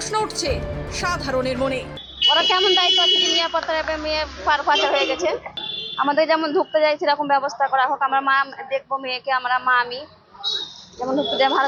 উঠছে সাধারণের মনে। ওরা কেমন দায়িত্ব আছে যে নিরাপত্তা মেয়ে পাচার হয়ে গেছে? আমাদের যেমন ঢুকতে যাই সেরকম ব্যবস্থা করা হোক। আমরা মা দেখবো মেয়েকে, আমরা মা আমি যেমন ঢুকতে যাই ভালো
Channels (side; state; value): both; identical; correlation 1.00